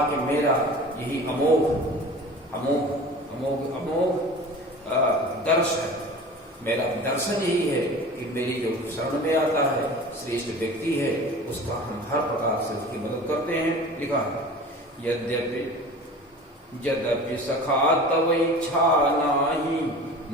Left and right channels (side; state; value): both; normal; correlation 0.39